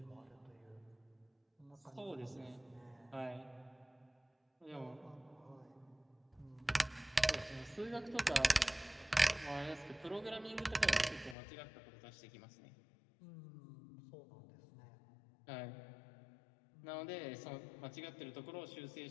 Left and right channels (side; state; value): right; drops out; at 11.4 s